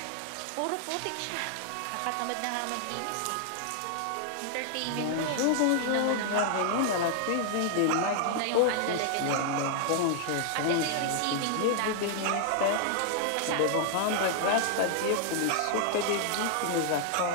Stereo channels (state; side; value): different; both; correlation 0.00